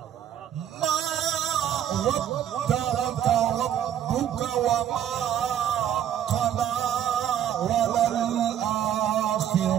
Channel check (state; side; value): quieter; left; 10.2 dB